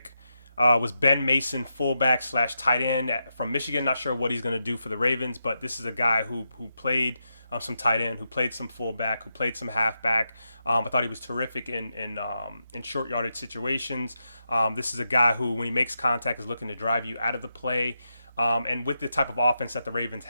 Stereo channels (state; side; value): inverted; both; correlation -0.85